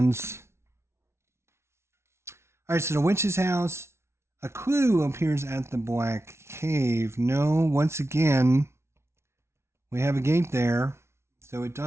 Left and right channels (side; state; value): left; late; 0.13 ms